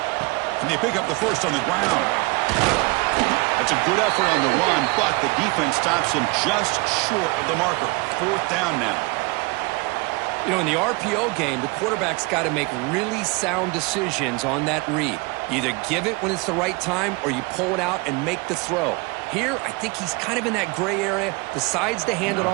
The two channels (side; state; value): left; quieter; 26.8 dB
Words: Can they pick up the first on the ground? That's a good effort on the run, but the defense stops him just short of the marker. 4th down now. You know, in the RPO game, the quarterback's got to make really sound decisions on that read. You either give it when it's the right time or you pull it out and make the throw. Here, I think he's kind of in that gray area, decides to hand it